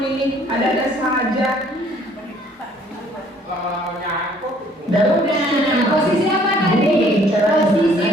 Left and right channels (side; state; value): both; normal; correlation 0.60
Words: ada-ada saja. Nah, posisi apa tadi? Posisi